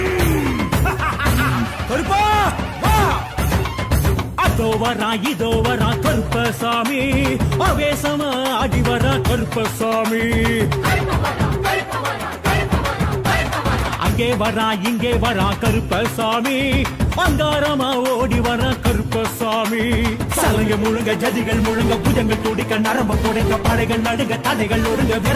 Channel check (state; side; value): identical; both; correlation 1.00